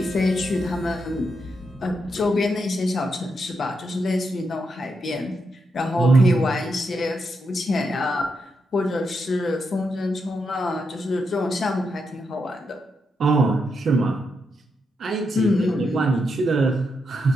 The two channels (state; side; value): normal; both; correlation 0.83